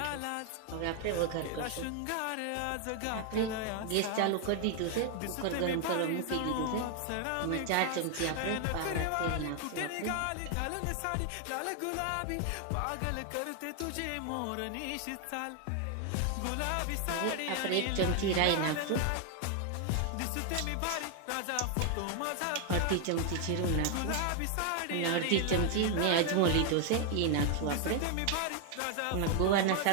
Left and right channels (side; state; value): both; different; correlation 0.00